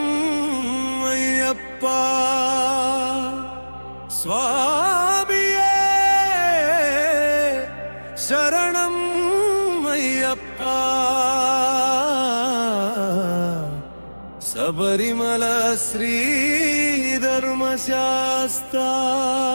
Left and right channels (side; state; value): both; inverted; correlation -1.00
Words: అయ్యప్ప. స్వామియే శరణం అయ్యప్ప. శబరిమల శ్రీ ధర్మశాస్త్ర